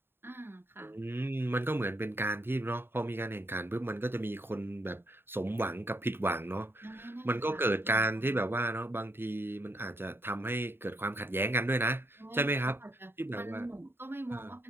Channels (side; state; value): left; late; 0.11 ms